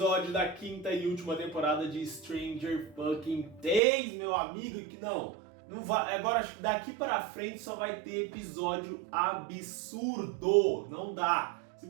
da quinta e última temporada de Stranger Fucking Things, meu amigo, que não vai, agora acho que daqui para frente só vai ter episódio absurdo, não dá,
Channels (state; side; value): drops out; left; at 3.8 s